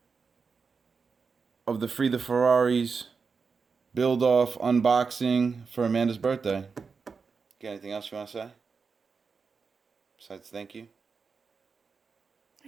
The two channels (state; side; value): quieter; left; 5.1 dB